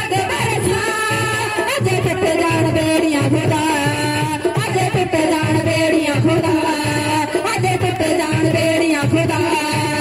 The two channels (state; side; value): identical; both; correlation 1.00